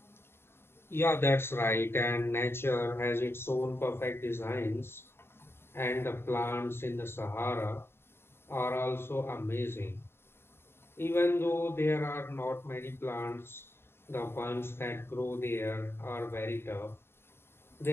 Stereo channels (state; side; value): late; right; 0.11 ms